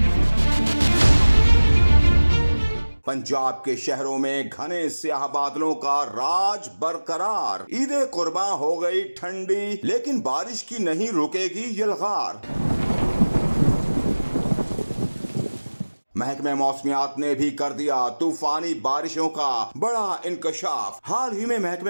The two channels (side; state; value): both; inverted; correlation -1.00